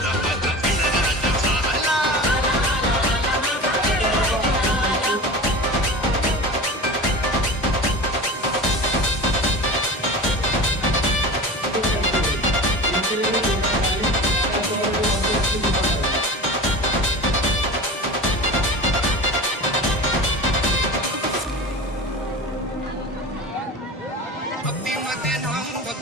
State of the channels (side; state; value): both; normal; correlation 0.32